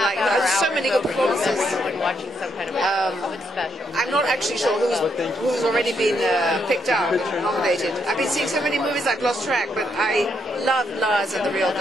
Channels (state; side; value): normal; both; correlation 0.77